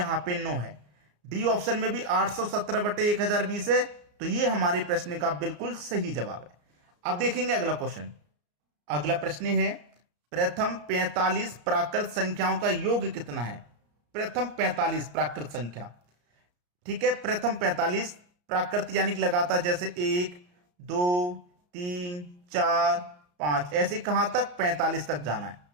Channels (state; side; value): late; left; 34 ms